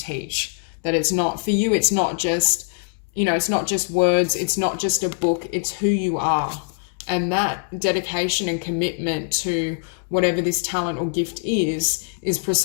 that it's not, for you, it's not just, it's not just words, it's not just a book, it's who you are. And that dedication and commitment to whatever this talent or gift is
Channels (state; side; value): silent; right; digital silence